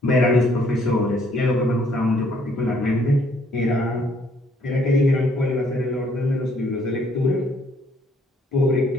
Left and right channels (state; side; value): normal; both; correlation 0.65